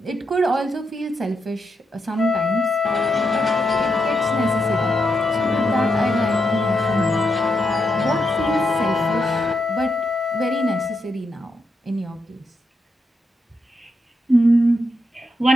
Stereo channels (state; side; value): normal; both; correlation 0.82